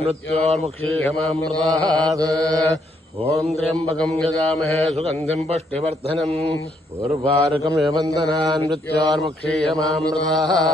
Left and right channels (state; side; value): normal; both; correlation 0.72